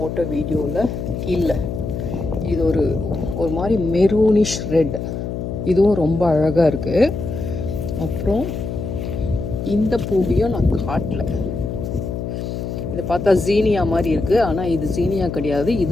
வீடியோவில் இல்லை. இது ஒரு மாதிரி மெரூனிஷ் ரெட், இதுவும் ரொம்ப அழகாக இருக்குது. அப்புறம் இந்த பூவையும் நான் காட்டல. இதை பார்த்தா ஜீனியா மாதிரி இருக்குது, ஆனால் இது ஜீனியா கிடையாது.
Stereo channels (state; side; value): noise; left; hum, 5 dB below the sound